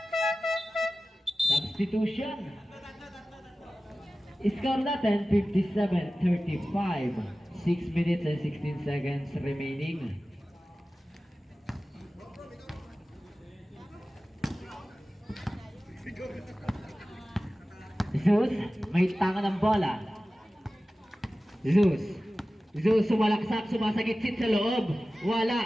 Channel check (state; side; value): normal; both; correlation 0.96